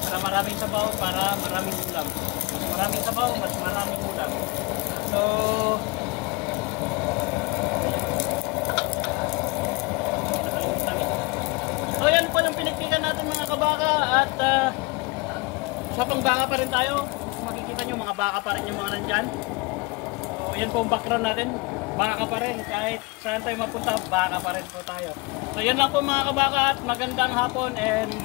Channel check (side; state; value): right; quieter; 25.6 dB